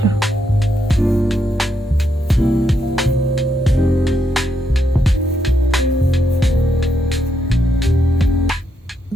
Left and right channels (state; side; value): normal; both; correlation 0.79